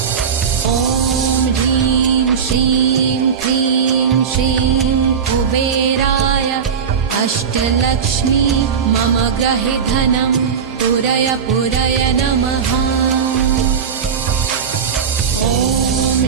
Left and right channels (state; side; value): quieter; left; 6.8 dB